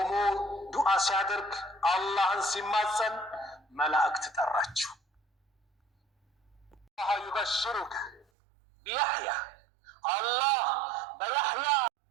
ዱዓ ሲያደርግ አላህን ሲማጸን መላእክት ጠራቸው الله يبشرك بيحيى الله بيحيى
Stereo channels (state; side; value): drops out; left; at 8.2 s